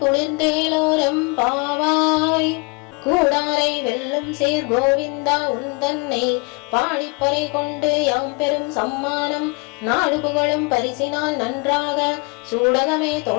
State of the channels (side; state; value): right; quieter; 31.1 dB